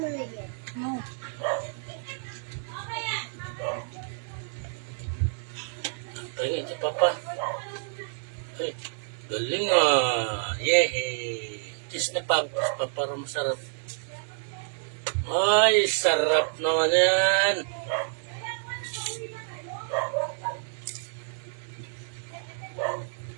No. Tingin si Papa. Ay, galing ah. Yehey. Cheese na pag. Para masarap. Ay, sarap naman yan.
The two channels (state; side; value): silent; left; digital silence